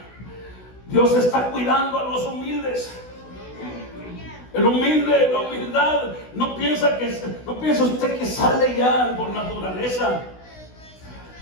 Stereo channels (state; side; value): late; right; 16 ms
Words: Dios está cuidando a los humildes. El humilde, la humildad, no piensa usted que sale ya por naturaleza.